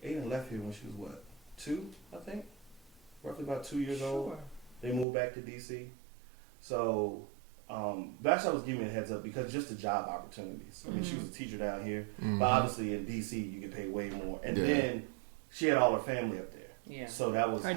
Aiden left here when she was what, 2, I think? Roughly about 2 years old. Sure. They moved back to DC. So, Vashti was giving me a heads up because just the job opportunities. I mean, she was a teacher down here, but obviously in DC you get paid way more. And Yeah. then she had all her family up there. Yeah. So that was Her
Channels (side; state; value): left; drops out; at 5.1 s